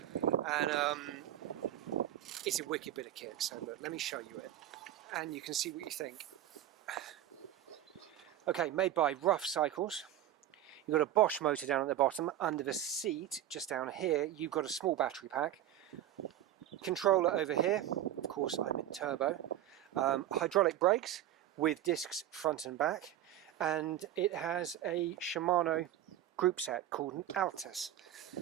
And it's a wicked bit of kit, so look, let me show you it and you can see what you think. Okay, made by Ruff Cycles. You've got a Bosch motor down at the bottom. Under the seat, just down here, you've got a small battery pack. Controller over here, of course I'm in turbo. Hydraulic brakes with discs front and back. And it has a Shimano group set called an Altus.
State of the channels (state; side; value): quieter; left; 12.1 dB